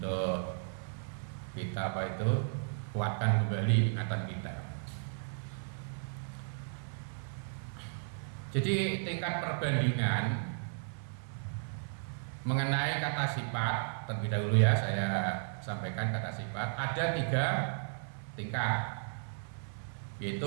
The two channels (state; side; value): silent; left; 55 dB below the other